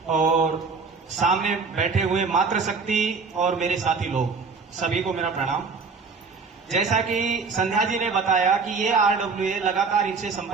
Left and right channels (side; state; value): left; quieter; 4.8 dB